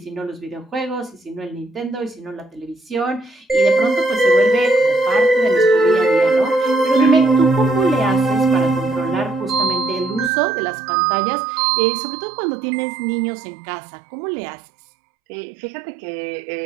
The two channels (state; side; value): drops out; left; at 10.3 s